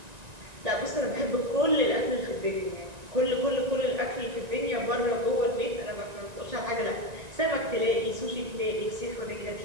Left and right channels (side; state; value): left; late; 1.9 ms